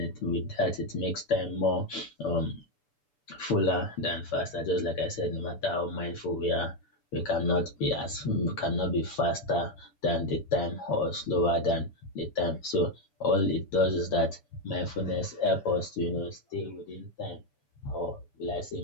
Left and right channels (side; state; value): right; late; 6.9 ms